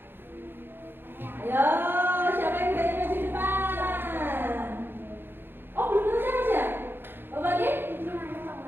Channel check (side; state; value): left; late; 0.10 ms